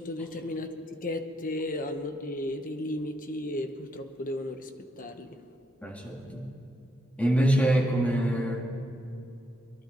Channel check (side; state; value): both; normal; correlation 0.77